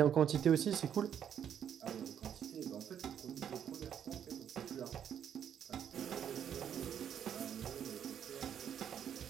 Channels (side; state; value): left; quieter; 9.0 dB